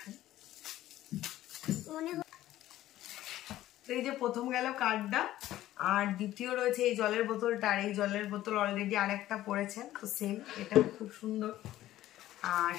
তো এই যে প্রথম গেল কার্ডটা, আর দ্বিতীয় রয়েছে এই জলের বোতলটা। আর এই জলের বোতল অলরেডি আরেকটা পড়েছে, তো সেম, এটা খুব সুন্দর। আর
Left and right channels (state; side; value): quieter; right; 14.2 dB